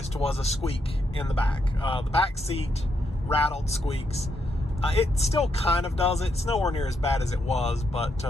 was a squeak in the back. The back seat rattled, squeaks. It still kind of does it. It's nowhere near as bad as it was, but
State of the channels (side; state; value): both; normal; correlation 0.79